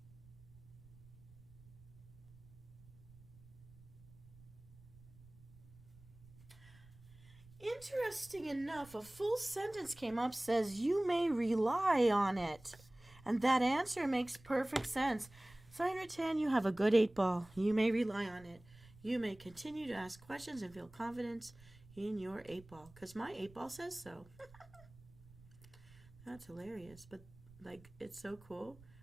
Interesting enough, a full sentence came up, says you may rely on it. And that answer makes perfect sense. Cyan Rattan, you have a good 8 Ball. You may rely on it. You may continue to ask questions and feel confidence in your 8 Ball. Because my 8 Ball says so. That's hilarious. But, like, it's so cool.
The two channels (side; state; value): right; noise; rumble, 23 dB below the sound